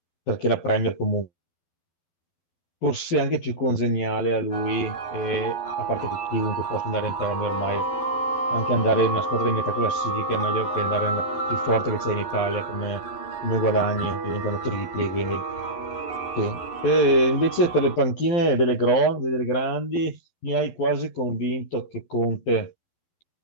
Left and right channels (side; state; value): right; late; 12 ms